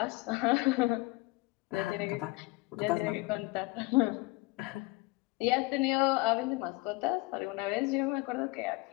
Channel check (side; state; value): right; quieter; 23.8 dB